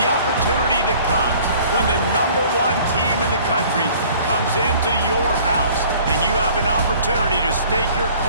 opportunity that comes when the #1 team in the country comes into your house and you have an opportunity to stake your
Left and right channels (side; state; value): both; inverted; correlation -0.51